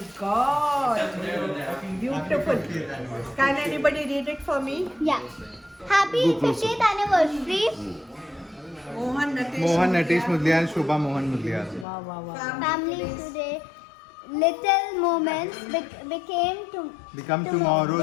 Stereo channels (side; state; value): right; drops out; at 11.9 s